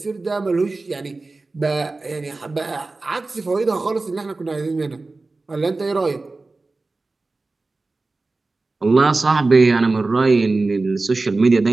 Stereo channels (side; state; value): left; quieter; 3.5 dB